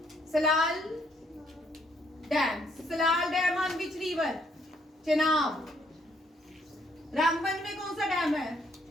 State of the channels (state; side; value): normal; both; correlation 0.69